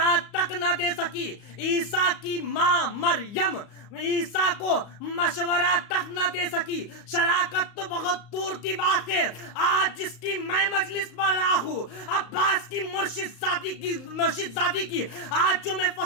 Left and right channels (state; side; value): late; right; 35 ms